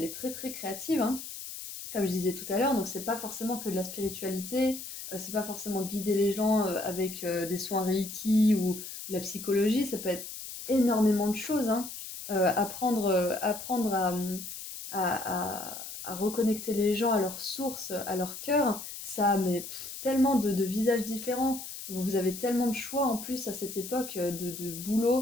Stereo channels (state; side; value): noise; left; hiss, 10 dB below the sound